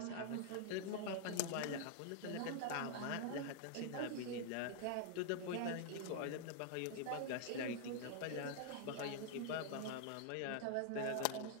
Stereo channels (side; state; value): both; different; correlation 0.00